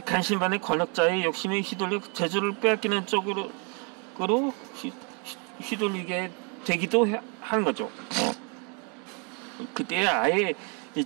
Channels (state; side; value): quieter; left; 35.7 dB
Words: 간신반의 권력자의 욕심에 휘둘려 재주를 빼앗기는 쪽으로 휘둘리게 되기도 하는 거죠. 그때 아예